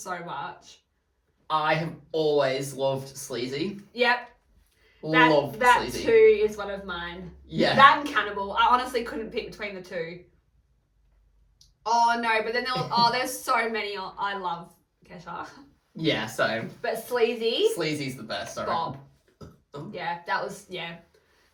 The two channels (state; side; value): identical; both; correlation 1.00